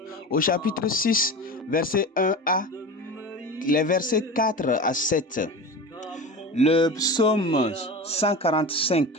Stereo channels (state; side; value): normal; both; correlation 0.30